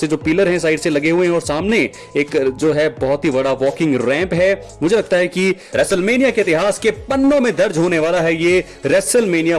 जो पिलर हैं साइड से लगे हुए हैं और सामने एक जो है बहुत ही बड़ा वॉकिंग रैंप है। मुझे लगता है कि रेसलमेनिया के इतिहास के पन्नों में दर्ज होने वाला है ये रेसलमेनिया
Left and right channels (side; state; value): both; identical; correlation 1.00